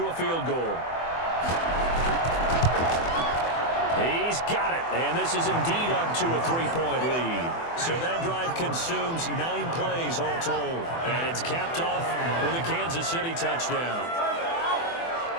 a field goal. He's got it, and this is indeed up to a 3-point lead. So that drive consumes 9 plays all told, and it's capped off with a Kansas City touchdown.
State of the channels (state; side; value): late; right; 24 ms